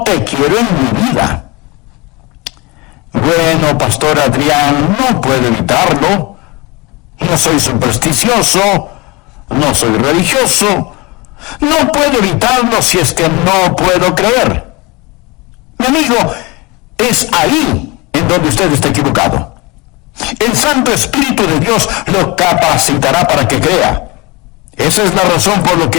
te quiero en mi vida. Bueno, Pastor Adrián, no puedo evitarlo. No soy supersticioso, no soy religioso. No puedo evitarlo si es que no puedo creer. Mi amigo, es ahí en donde usted está equivocado. El Santo Espíritu de Dios lo capacitará para que crea. Esa es la razón por lo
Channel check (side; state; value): right; quieter; 25.0 dB